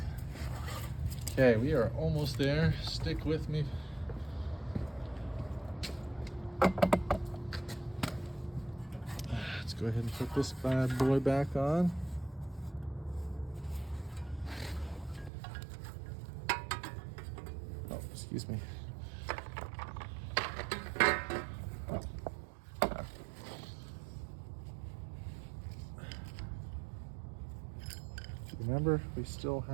Okay, we are almost there. Stick with me. Let's go ahead and put this bad boy back on. Oh, excuse me. Remember, we still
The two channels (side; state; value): left; drops out; at 15.3 s